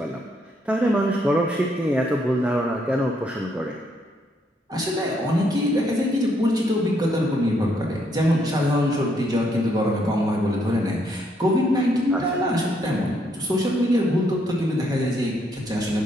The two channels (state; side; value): normal; both; correlation 0.73